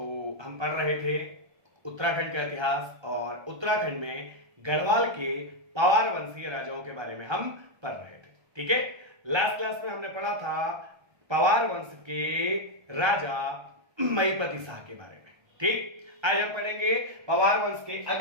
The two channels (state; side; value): late; left; 1.3 ms